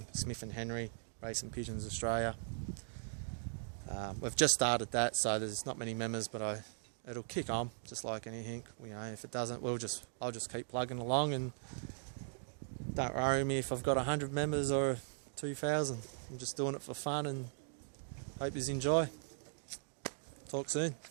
Smith and Henry, Racing Pigeons Australia. We've just started that, so there's not many members, but it'll kick on, just like anything. You know, if it doesn't, I'll just keep plugging along, and don't worry me if I've got 100 members or 2,000. I'm just doing it for fun, and hope you enjoy. Talk soon.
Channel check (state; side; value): silent; left; digital silence